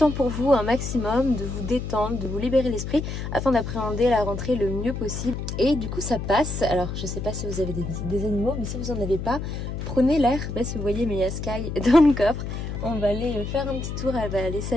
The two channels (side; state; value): left; noise; hum, 5 dB below the sound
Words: pour vous un maximum, de vous détendre, de vous libérer l'esprit afin d'appréhender la rentrée le mieux possible. Et du coup ça passe, alors je sais pas si vous avez des animaux mais si vous en avez pas, prenez l'air. Je sais pas si vous voyez mais il y a Sky dans le coffre, on va aller faire un petit tour, elle va aller